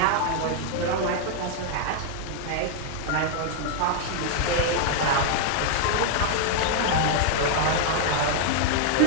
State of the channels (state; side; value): different; both; correlation 0.00